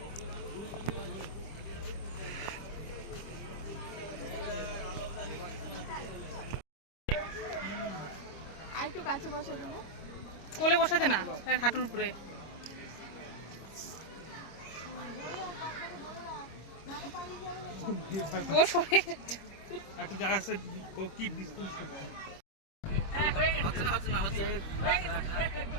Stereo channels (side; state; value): right; late; 26 ms